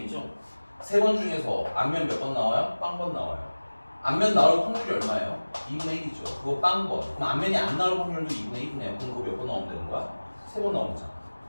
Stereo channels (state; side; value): inverted; both; correlation -1.00